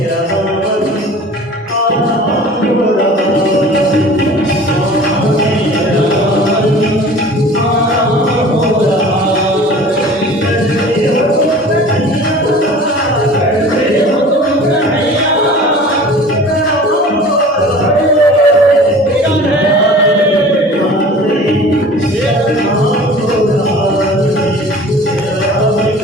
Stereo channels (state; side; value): normal; both; correlation 0.43